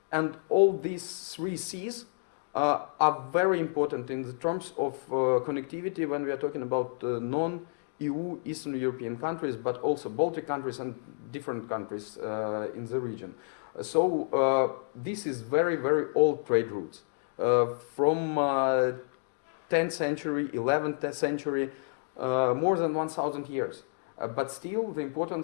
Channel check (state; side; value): silent; right; digital silence